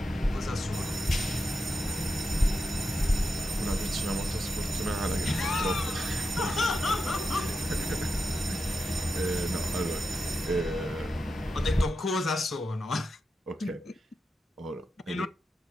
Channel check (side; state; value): both; normal; correlation 0.88